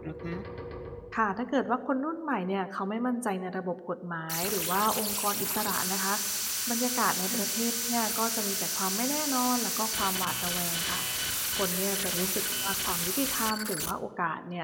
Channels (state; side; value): identical; both; correlation 1.00